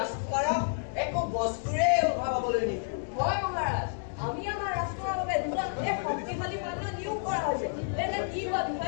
একো বস্তুৰে অভাৱ হবলৈ নিদিওঁ। হয় মহাৰাজ, আমি আমাৰ ৰাষ্ট্ৰৰ বাবে দুজন শক্তিশালী সৈন্য নিয়োগ কৰা হৈছে। এনে কি কোৱা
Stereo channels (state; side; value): silent; right; digital silence